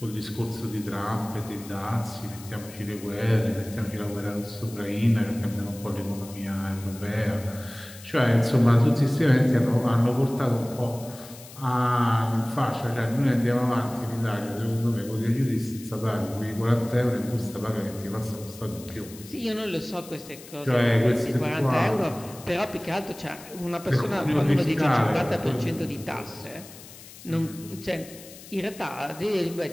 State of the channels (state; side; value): noise; left; hiss, 18 dB below the sound